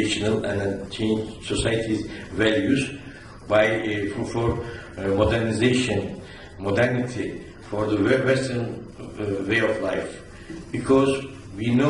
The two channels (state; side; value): identical; both; correlation 1.00